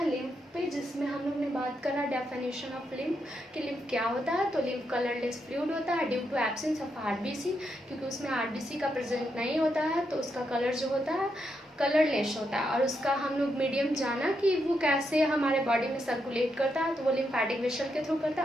लिम्फ पे, जिसमें हम लोग ने बात करा डेफिनेशन ऑफ लिम्फ कि लिम्फ क्या होता है। तो लिम्फ कलरलेस फ्लूइड होता है due to absence of RBC, क्योंकि उसमें आरबीसी का प्रेजेंट नहीं होता है, तो उसका कलर जो होता है कलरलेस होता है। और उसका हम लोग मीडियम जाना कि वो कैसे हमारे बॉडी में सर्कुलेट करता है, तो वो लिम्फेटिक वेसल के थ्रू करता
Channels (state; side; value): normal; both; correlation 0.81